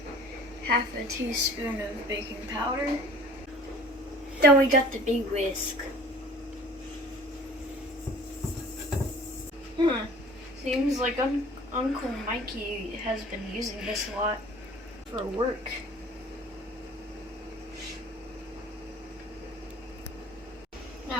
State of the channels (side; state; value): both; normal; correlation 0.47